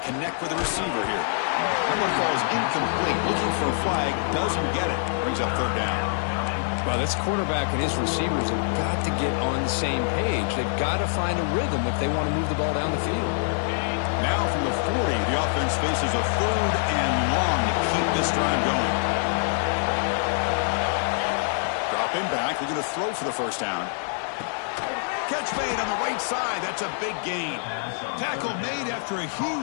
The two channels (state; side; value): silent; right; digital silence